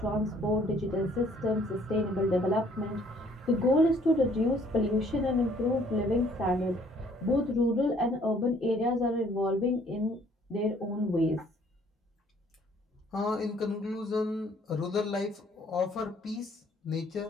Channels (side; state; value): both; normal; correlation 0.61